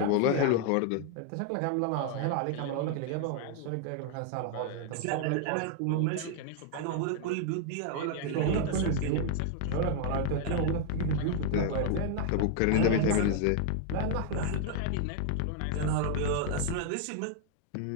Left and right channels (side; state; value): both; different; correlation 0.00